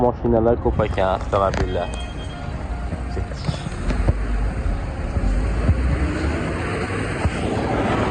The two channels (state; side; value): identical; both; correlation 1.00